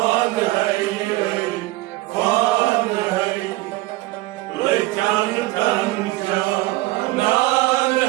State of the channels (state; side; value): quieter; left; 19.1 dB